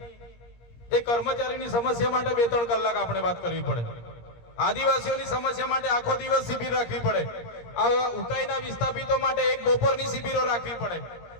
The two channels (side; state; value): right; late; 17 ms